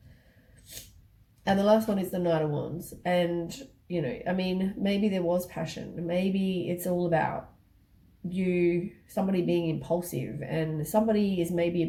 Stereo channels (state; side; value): identical; both; correlation 1.00